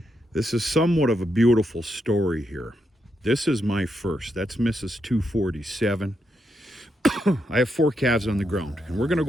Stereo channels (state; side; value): normal; both; correlation 0.82